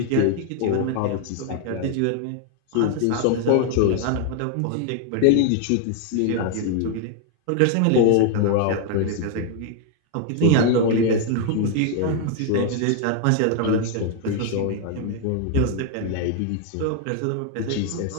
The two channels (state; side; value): different; both; correlation 0.00